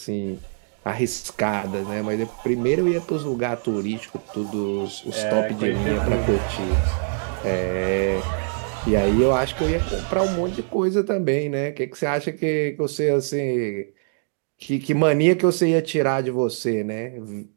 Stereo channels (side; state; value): left; silent; digital silence